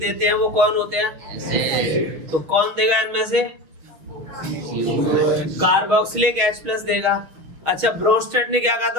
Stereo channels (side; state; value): left; late; 6.2 ms